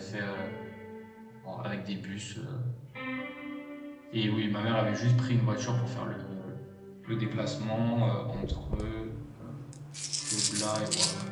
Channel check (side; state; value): both; identical; correlation 1.00